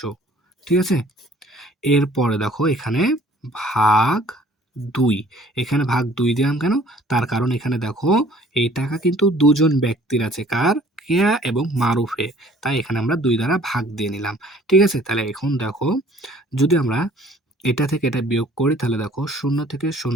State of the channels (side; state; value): both; normal; correlation 0.54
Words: ঠিক আছে? এরপরে দেখো এখানে ভাগ ২, এখানে ভাগ ২ দিলাম কেন? তার কারণ এখানে দেখো এই টাকা কিন্তু দুজন ব্যক্তির আছে, কার? কেয়া এবং মারুফে। তাই এখানে আমরা ২ দ্বারা ভাগ দিয়ে নিলাম। ঠিক আছে? তাহলে এখন দেখো যদি আমরা এটা থেকে এটা বিয়োগ করি তাহলে দেখো ০ থেকে